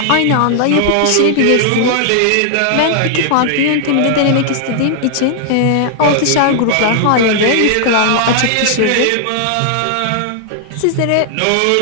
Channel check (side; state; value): both; different; correlation 0.00